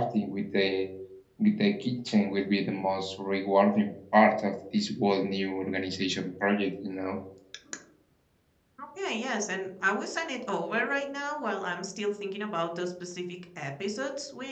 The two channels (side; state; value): both; identical; correlation 1.00